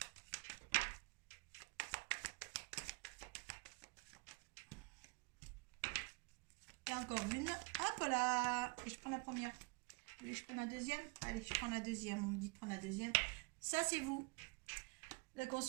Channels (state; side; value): quieter; left; 28.8 dB